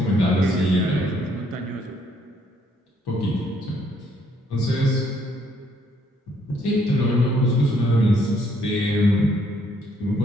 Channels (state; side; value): normal; both; correlation 0.67